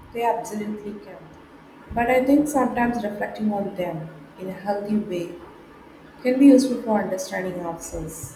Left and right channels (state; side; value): identical; both; correlation 1.00